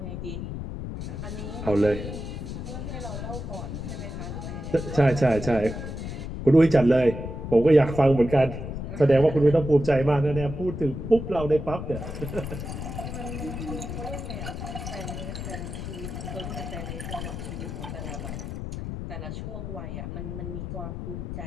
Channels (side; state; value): left; noise; rumble, 6 dB below the sound